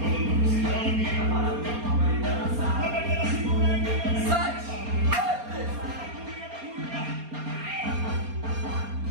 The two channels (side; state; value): left; late; 4.3 ms